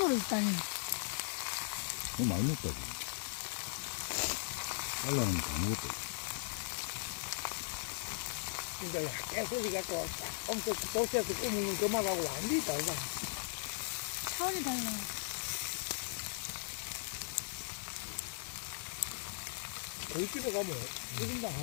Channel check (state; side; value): silent; right; 52 dB below the other